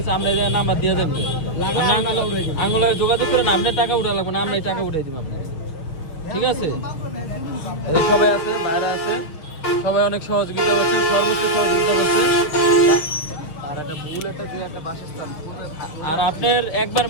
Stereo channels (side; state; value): right; late; 6.4 ms